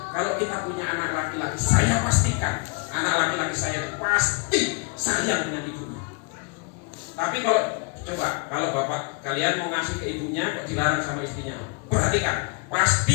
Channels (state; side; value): quieter; right; 32.6 dB